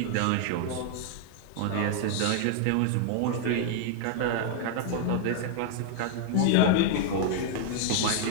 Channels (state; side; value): different; both; correlation 0.00